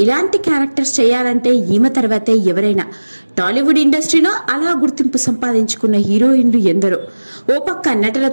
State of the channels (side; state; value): both; inverted; correlation -1.00